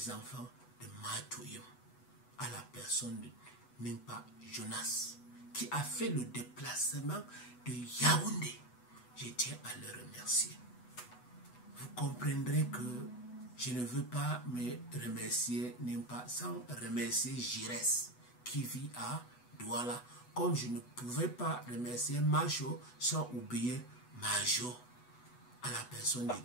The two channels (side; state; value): right; late; 8.1 ms